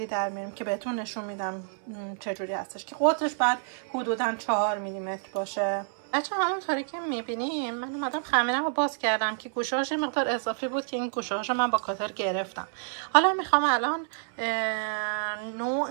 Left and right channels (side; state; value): left; silent; 58 dB below the other